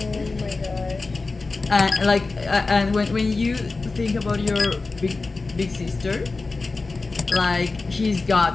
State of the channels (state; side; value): quieter; right; 3.7 dB